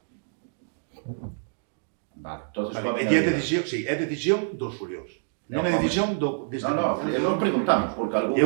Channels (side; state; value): left; silent; digital silence